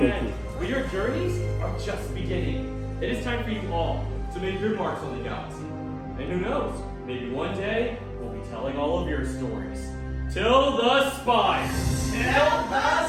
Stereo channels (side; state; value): both; identical; correlation 1.00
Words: end. But your journeys are just beginning. It is time for you all to make your marks on the galaxy. And who knows, maybe one day we'll be telling all of your stories. Till the spire! Till the